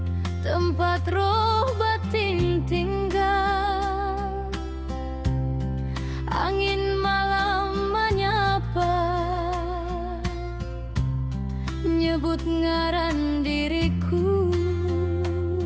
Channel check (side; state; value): both; identical; correlation 1.00